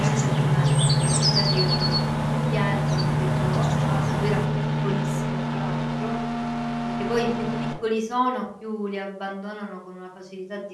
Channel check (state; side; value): identical; both; correlation 1.00